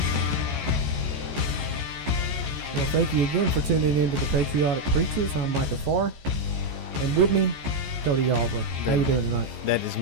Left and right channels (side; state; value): left; late; 14 ms